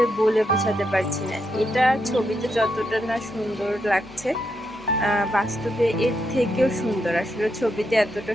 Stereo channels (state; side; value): normal; both; correlation 0.82